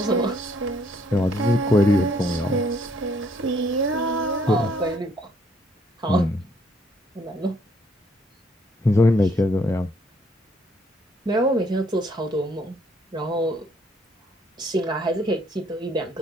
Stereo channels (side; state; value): both; normal; correlation 0.67